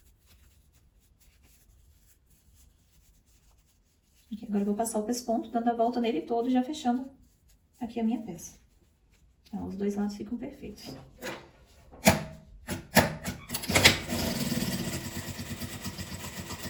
Aqui, agora eu vou passar o pesponto, dando a volta nele todo, já fechando aqui a minha peça. Então, os dois lados ficam perfeitos.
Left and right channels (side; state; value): both; identical; correlation 1.00